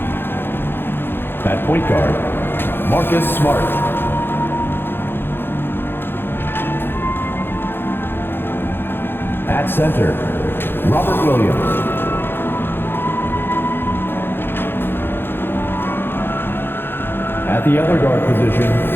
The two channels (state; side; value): late; right; 0.10 ms